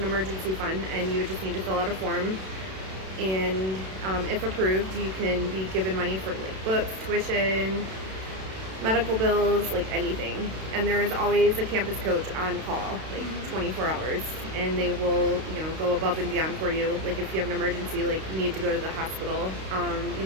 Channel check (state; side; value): late; left; 32 ms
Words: emergency fund, and you would just need to fill out a form. And if approved, you can be given money for like books, tuition, medical bills, like anything. And there is always a campus coach on call, like 24 hours, and they will, go above and beyond for you. Like if you have an emergency, like you need to go to the hospital,